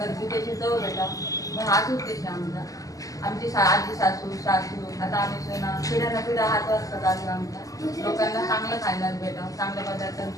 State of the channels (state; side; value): late; right; 0.17 ms